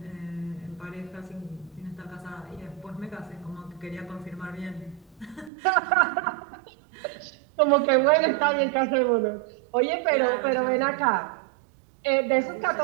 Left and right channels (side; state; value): left; drops out; at 5.5 s